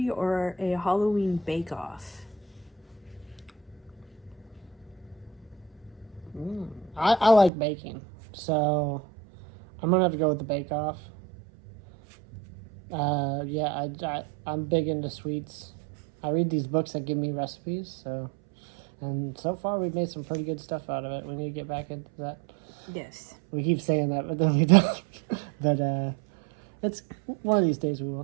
or a Halloween bake-off? I like baking, so I'm gonna have to go with the bake-off. I'm big into sweets. I read these books that give me recipes, and so far we've made some pretty good stuff out of it. We need to get back into that. Yes. We keep saying that, but then we don't. But it's one of these days we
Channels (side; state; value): left; drops out; at 7.5 s